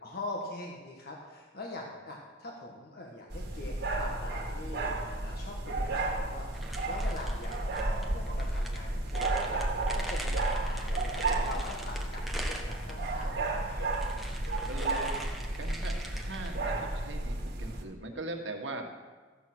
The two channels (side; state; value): both; normal; correlation 0.41